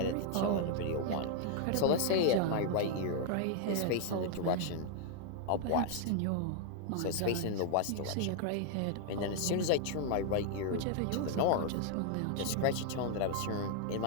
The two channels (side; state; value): both; different; correlation 0.00